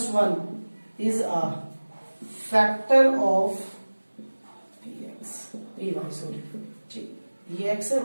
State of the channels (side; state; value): both; inverted; correlation -1.00